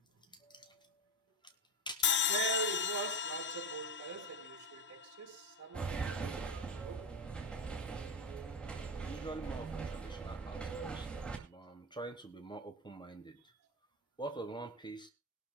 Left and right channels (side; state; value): both; normal; correlation 0.17